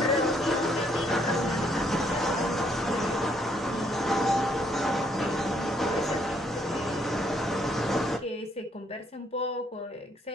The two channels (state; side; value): normal; both; correlation 0.69